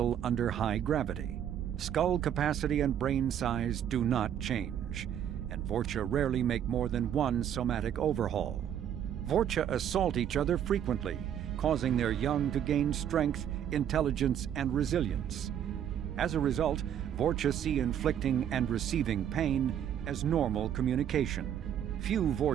under high gravity. Skull capacity and brain size do not change, and Vorcha rarely make more than one somatic overhaul. Vorcha assault each other frequently, causing their young to gain strength, intelligence, and resilience. As a result, Vorcha see inflicting and receiving pain as normal communication. Few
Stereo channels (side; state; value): left; quieter; 9.7 dB